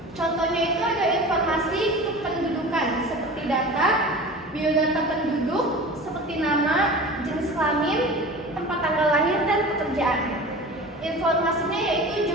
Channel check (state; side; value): normal; both; correlation 0.36